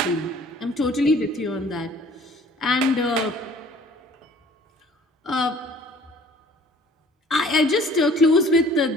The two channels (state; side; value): normal; both; correlation 0.53